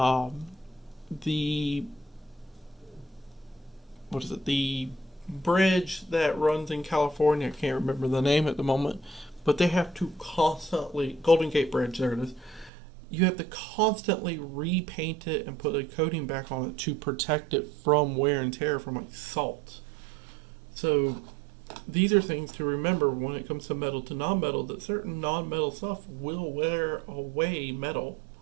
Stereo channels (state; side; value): drops out; left; at 12.7 s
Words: the what is it? The bridge that runs in California. I can't remember the name at the moment, but they have to constantly Golden Gate Bridge. There it is. You have to constantly repaint it and put a coating back on it to protect it from wear and tear from like salt. So these are things to remember when it comes to metal to non-metal, that certain non-metal stuff will wear away metal.